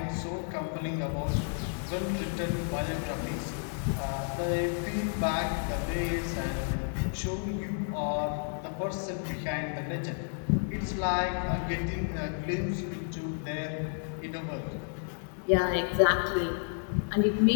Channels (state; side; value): silent; right; 57 dB below the other